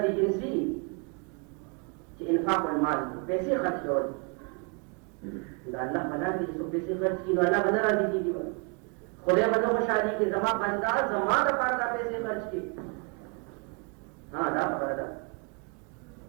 جنسي چې انفاق المال پیسې خرڅ کول دا الله بنا دي چې پیسې خرڅ کړي نو الله بنا راځي کیږي. خدای به نو خوشالي کې زما بندا زما د پاره دا پیسې خرڅ کړي. ها دا خبره ده.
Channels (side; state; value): left; quieter; 34.9 dB